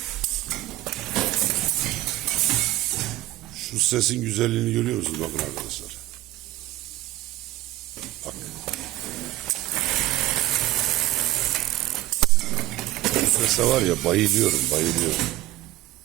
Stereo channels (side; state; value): left; quieter; 16.4 dB